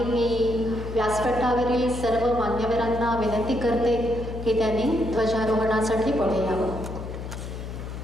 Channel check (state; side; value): noise; left; hum, 8 dB below the sound